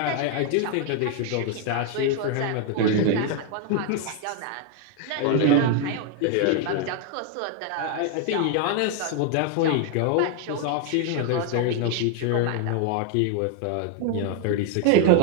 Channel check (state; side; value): different; both; correlation 0.01